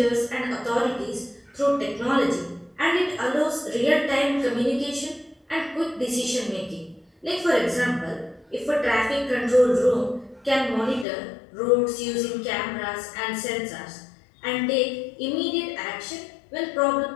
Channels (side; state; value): right; drops out; at 11.1 s